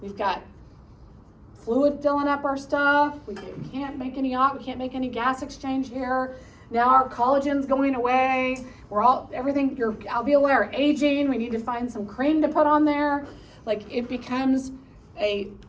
We've got fluid filling up our stuff. We can't make any gas exchange here. Now our collagen's going away. Everything, your alveoli are aging. We need to find some cream to put on there. Like it becomes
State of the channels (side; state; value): both; identical; correlation 1.00